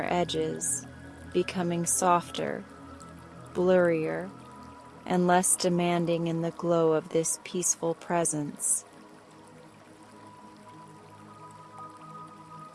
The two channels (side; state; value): both; identical; correlation 1.00